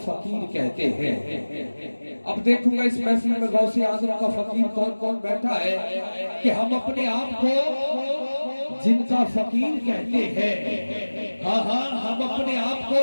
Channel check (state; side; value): inverted; both; correlation -1.00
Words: कहते हैं। अब देखूंगा इस महफिल में गौसे आज़म का फकीर कौन कौन बैठा है कि हम अपने आप को जिनका फकीर कहते हैं। हाँ हाँ, हम अपने आप को,